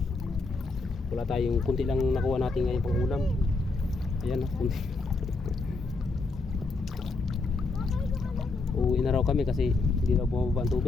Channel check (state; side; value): quieter; right; 3.7 dB